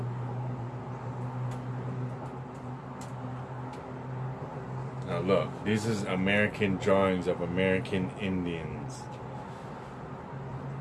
Now look, this is American drawings of American Indians.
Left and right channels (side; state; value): both; identical; correlation 1.00